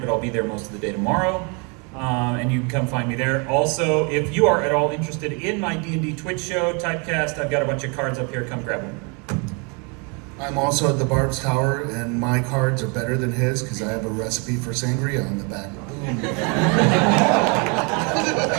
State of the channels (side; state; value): left; quieter; 33.5 dB